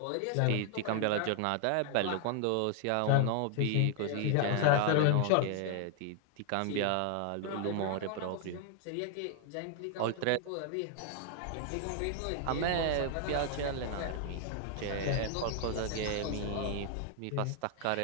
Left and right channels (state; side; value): different; both; correlation 0.00